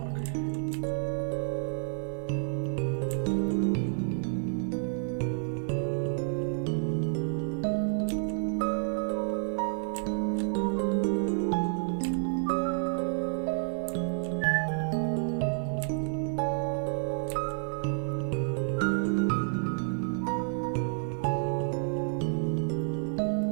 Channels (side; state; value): left; silent; digital silence